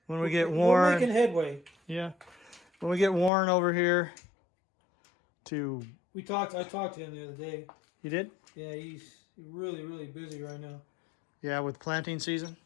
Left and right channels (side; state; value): right; drops out; at 3.3 s